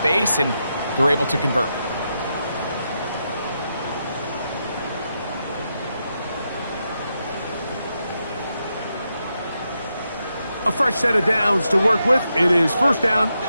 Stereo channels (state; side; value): inverted; both; correlation -0.84